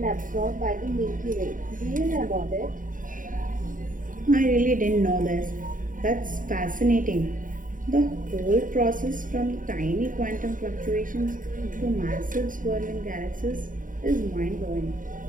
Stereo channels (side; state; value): left; late; 0.39 ms